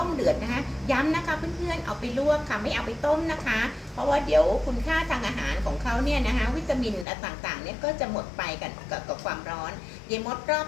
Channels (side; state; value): right; drops out; at 7.1 s